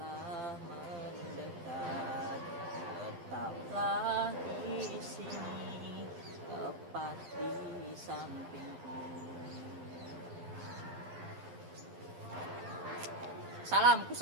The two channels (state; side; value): late; left; 12 ms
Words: mendekat. Tetaplah di sini, tepat di sampingku. Salamku